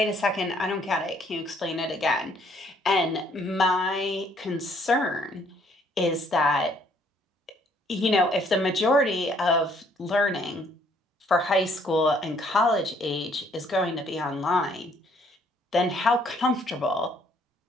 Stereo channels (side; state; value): both; normal; correlation 0.64